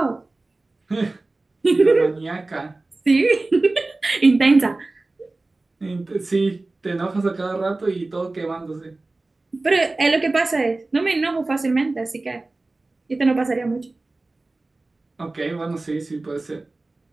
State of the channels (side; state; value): left; quieter; 3.2 dB